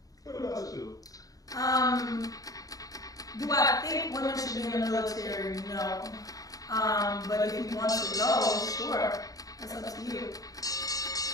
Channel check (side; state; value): right; late; 0.17 ms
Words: What about you? Do I think women should be in the military? No. But if you want to go, sure. That's up to you.